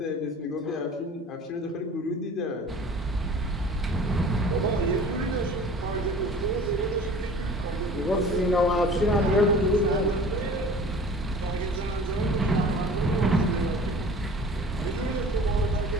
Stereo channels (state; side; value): normal; both; correlation 0.44